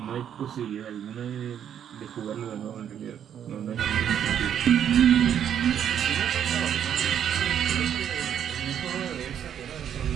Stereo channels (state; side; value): quieter; left; 9.3 dB